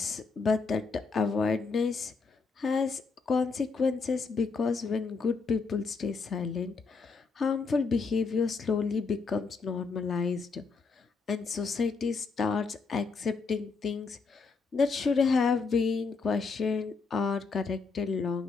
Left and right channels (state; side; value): quieter; right; 4.7 dB